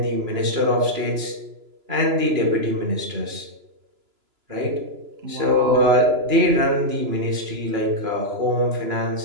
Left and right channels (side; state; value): left; late; 3.0 ms